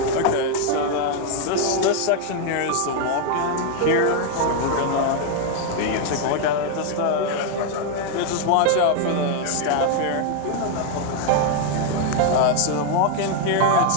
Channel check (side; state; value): both; different; correlation 0.00